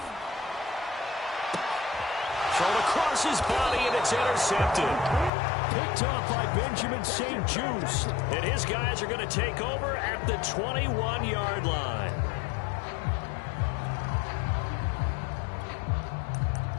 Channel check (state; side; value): drops out; right; at 5.3 s